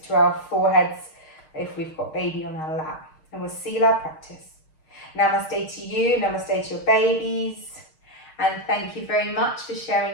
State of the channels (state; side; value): late; right; 6.5 ms